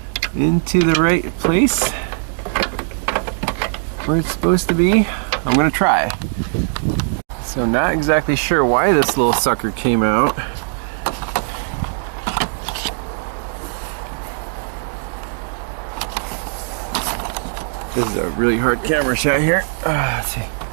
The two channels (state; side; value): silent; left; digital silence